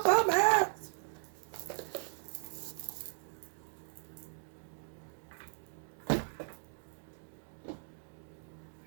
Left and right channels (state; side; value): silent; left; digital silence